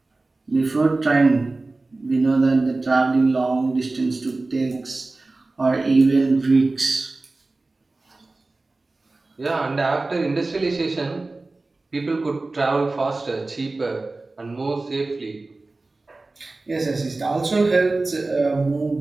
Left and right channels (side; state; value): left; quieter; 3.3 dB